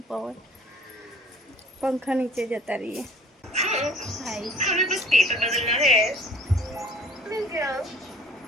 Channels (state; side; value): normal; both; correlation 0.51